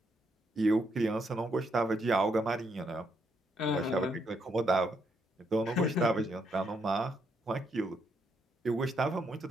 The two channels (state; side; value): normal; both; correlation 0.77